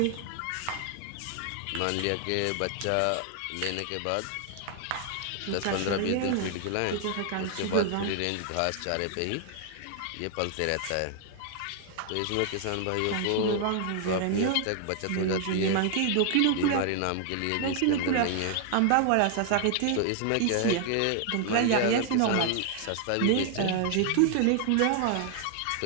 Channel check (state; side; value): different; both; correlation 0.00